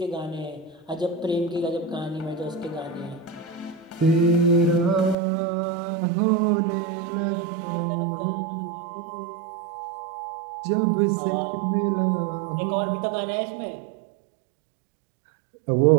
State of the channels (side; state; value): left; drops out; at 5.2 s